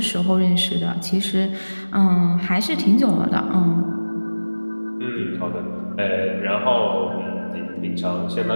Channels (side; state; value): both; inverted; correlation -1.00